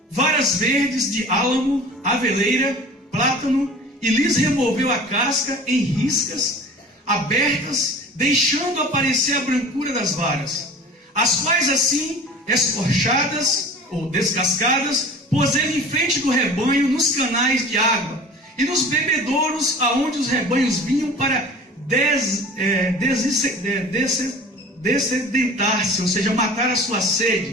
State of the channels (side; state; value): both; normal; correlation 0.41